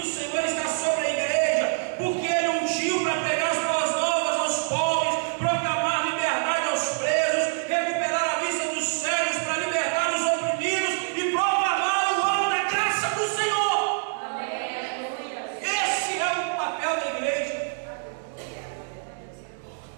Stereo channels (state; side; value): silent; left; digital silence